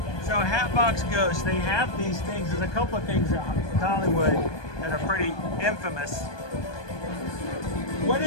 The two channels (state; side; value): late; right; 1.2 ms